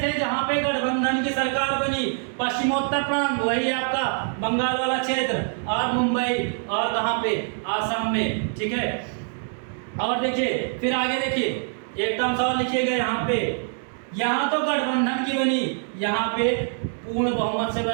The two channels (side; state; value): left; silent; 58 dB below the other